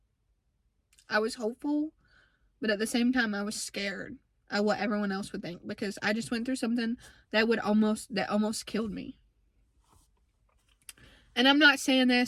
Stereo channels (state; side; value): identical; both; correlation 1.00